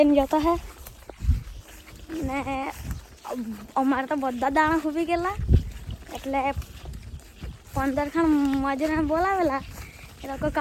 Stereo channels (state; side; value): identical; both; correlation 1.00